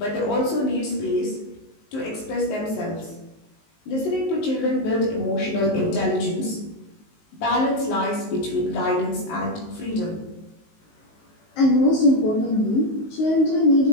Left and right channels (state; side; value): late; right; 19 ms